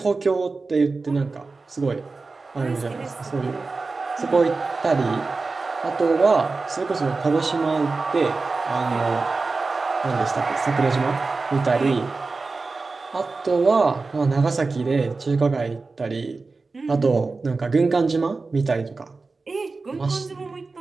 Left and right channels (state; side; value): quieter; left; 3.9 dB